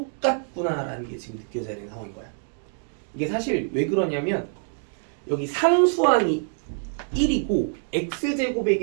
게 지금 느껴져야 되는 상황인 거야. 이게 사실 왜 그러냐면 여기 상수항이 1이고 x제곱의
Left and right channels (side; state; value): left; silent; digital silence